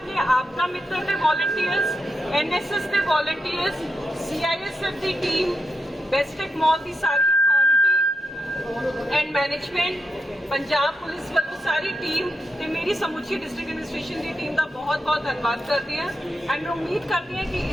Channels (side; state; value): both; normal; correlation 0.85